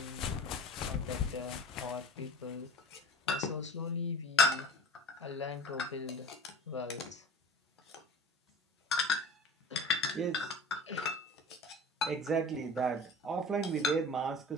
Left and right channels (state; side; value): normal; both; correlation 0.38